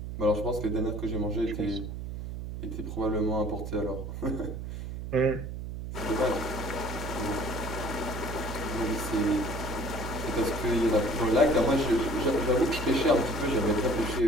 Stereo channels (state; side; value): noise; right; hum, 7 dB below the sound